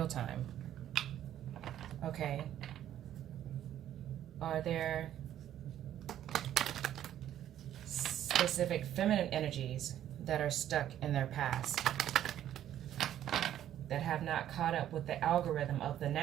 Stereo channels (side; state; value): left; quieter; 11.4 dB